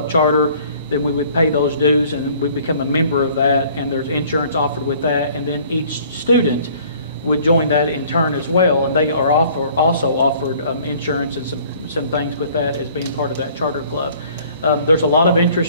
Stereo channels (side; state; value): both; inverted; correlation -0.54